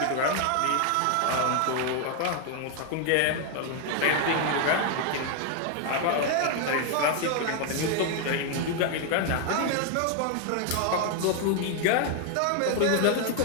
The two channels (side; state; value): both; different; correlation 0.00